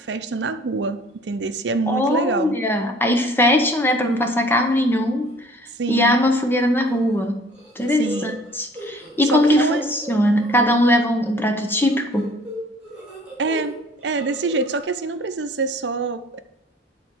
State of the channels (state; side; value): normal; both; correlation 0.52